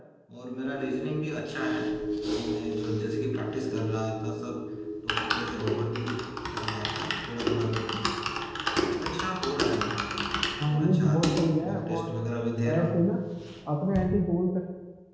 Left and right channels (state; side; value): identical; both; correlation 1.00